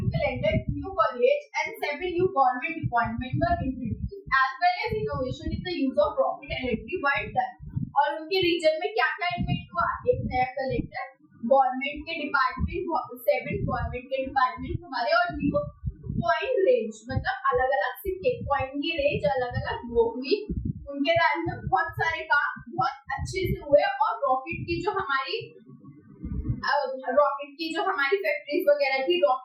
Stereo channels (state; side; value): identical; both; correlation 1.00